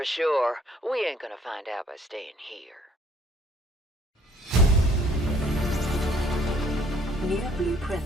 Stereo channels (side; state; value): both; normal; correlation 0.59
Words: sure, we ain't gonna find out by staying here. New